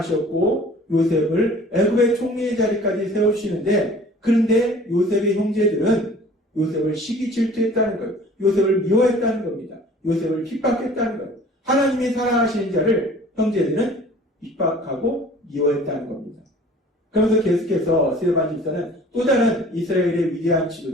요셉을 애굽의 총리의 자리까지 세우시는데 그런데 요셉의 형제들은 요셉을 시기 질투했다는 것, 요셉을 미워했다는 겁니다. 요셉을 핍박했다는 것. 하나님이 사랑하시는 자를 형제들은 핍박하고 미워했다는 겁니다. 그러면서 계속해서 스데반 집사는 또 다른 이스라엘의 위대한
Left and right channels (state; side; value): normal; both; correlation 0.48